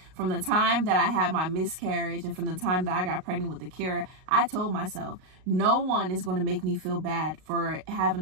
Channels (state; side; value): late; left; 38 ms